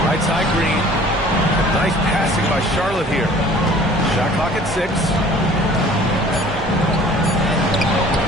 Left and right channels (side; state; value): both; normal; correlation 0.50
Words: Right side Green. Nice passing by Charlotte here. Shot clock at 6.